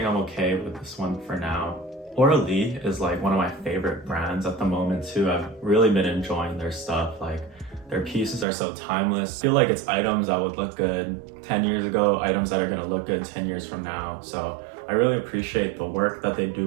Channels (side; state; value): left; drops out; at 8.5 s